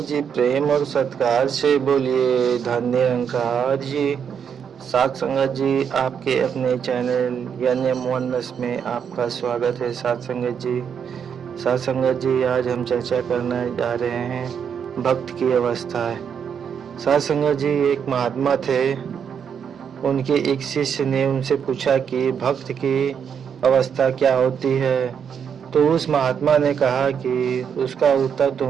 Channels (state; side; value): quieter; left; 7.4 dB